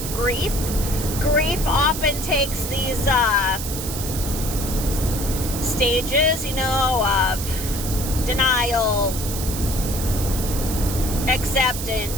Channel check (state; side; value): noise; right; hiss, 7 dB below the sound